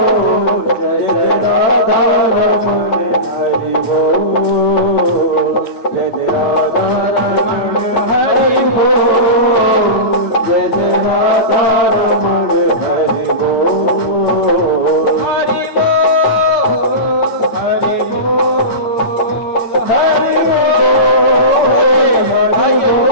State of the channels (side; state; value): right; late; 8.8 ms